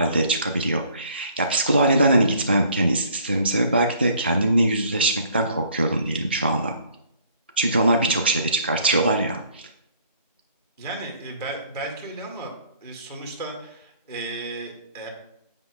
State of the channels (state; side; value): inverted; both; correlation -0.59